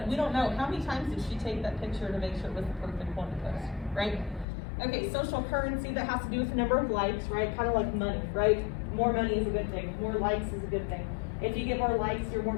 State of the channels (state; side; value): drops out; right; at 4.5 s